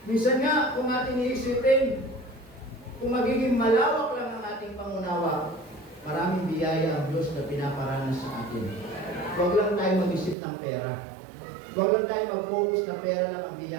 Minsan nga, kung ating iisipin, kung magiging malawak lang ang ating pangunawa, maraming biyaya ang Diyos na pinaparanas sa atin. Huwag lang tayo mag-isip ng pera. Huwag lang tayo mag-focus na pera lang ang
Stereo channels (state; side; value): drops out; left; at 10.4 s